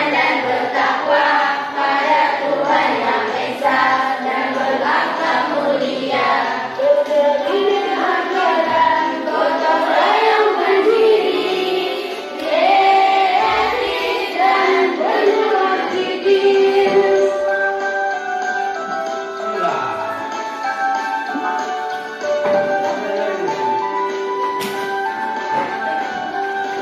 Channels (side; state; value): both; identical; correlation 1.00